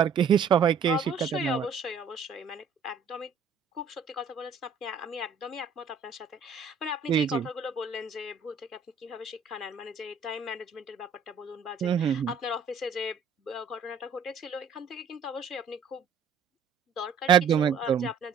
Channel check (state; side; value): quieter; left; 5.5 dB